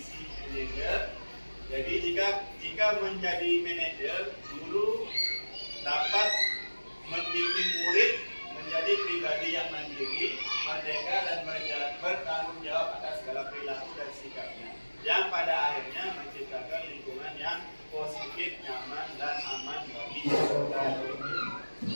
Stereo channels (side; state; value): both; inverted; correlation -1.00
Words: manajer. Jadi jika menjadi manajer, guru dapat membimbing murid menjadi pribadi yang mandiri, merdeka dan bertanggung jawab atas segala perilaku dan sikapnya, yang pada akhirnya menciptakan lingkungan yang positif